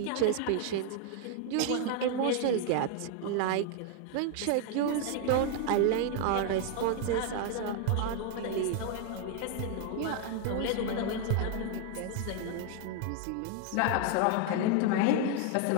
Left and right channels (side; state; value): both; different; correlation 0.00